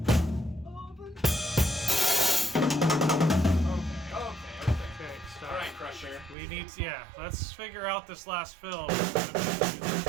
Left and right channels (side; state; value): left; drops out; at 6.4 s